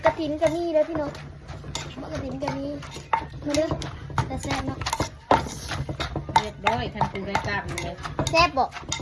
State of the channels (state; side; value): identical; both; correlation 1.00